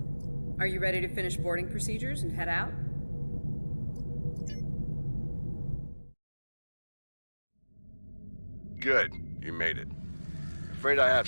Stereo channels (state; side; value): inverted; both; correlation -1.00